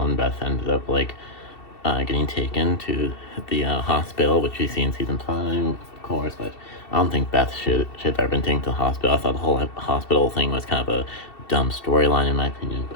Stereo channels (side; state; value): right; late; 2.7 ms